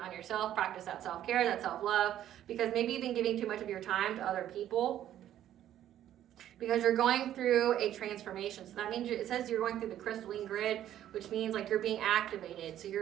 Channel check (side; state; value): left; quieter; 11.7 dB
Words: yourself, practice that self-care, that self-love, because maybe you've been giving too much of your time to other people because you're going through a transformation. So that means it says you're going through the crystalline grid, which means like you're being activated. So